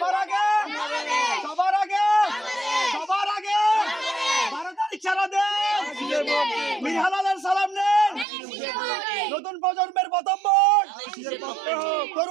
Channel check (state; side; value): drops out; left; at 8.2 s